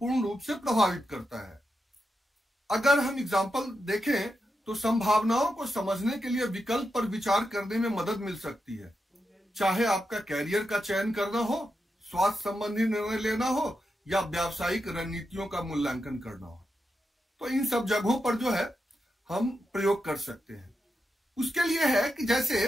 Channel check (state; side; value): normal; both; correlation 0.87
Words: रूप से प्रभावित करता है। अगर हम एग्जाम्पल देखें तो संभावनाओं को समझने के लिए विकल्प पर विचार करने में मदद मिल सकती है। चाहे आपका कैरियर का चयन करना हो, स्वास्थ्य संबंधी निर्णय लेना हो या व्यावसायिक रणनीतियों का मूल्यांकन करना हो, तो इन सब जगहों पर जो है हम प्रयोग कर सकते हैं। उसके लिए है कि जैसे